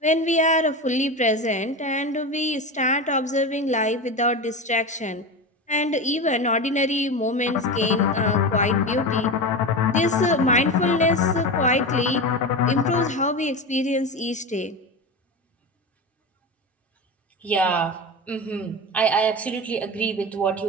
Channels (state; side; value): normal; both; correlation 0.23